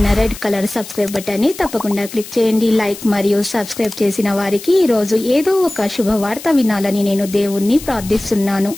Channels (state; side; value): noise; left; hiss, 14 dB below the sound